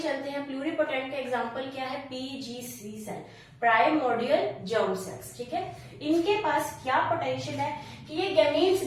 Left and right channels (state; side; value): identical; both; correlation 1.00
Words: हैं। प्लूरिपोटेंट का एग्जांपल क्या है, PGC cell, primordial germ cells, ठीक है। इनके पास क्या पोटेंशियल है कि ये गैमीट्स